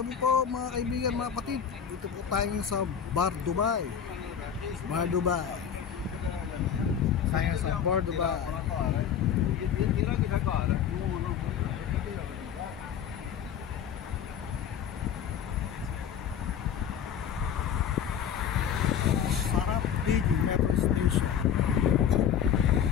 po mga kaibigan, mga kapatid. Dito po tayo sa Bar Dubai. Bar Dubai. Tayo sa Bar Dubai. Sarap Big Metro Station.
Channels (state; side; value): quieter; right; 8.3 dB